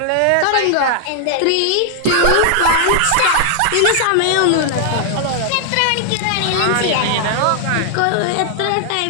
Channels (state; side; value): different; both; correlation 0.00